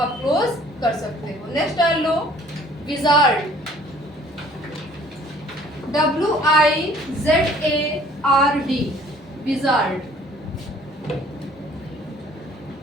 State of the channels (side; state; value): both; normal; correlation 0.56